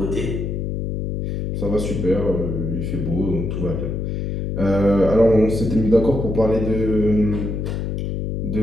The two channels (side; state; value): left; noise; hum, 3 dB below the sound